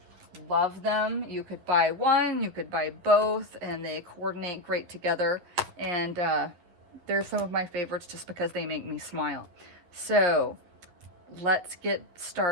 Love them. You could buy one, you could buy both, and they coordinate great together. And they're some of my favorites just because they make me smile. So let's get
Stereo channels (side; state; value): left; late; 12 ms